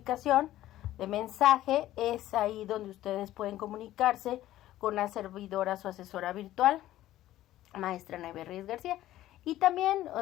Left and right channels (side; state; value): right; quieter; 14.3 dB